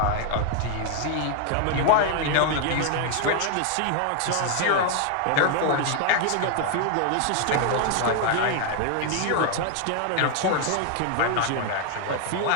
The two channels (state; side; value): different; both; correlation 0.00